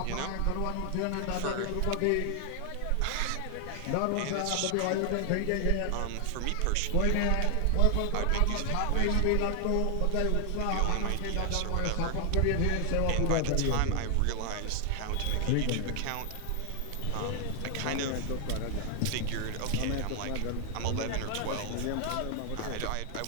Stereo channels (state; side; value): different; both; correlation 0.00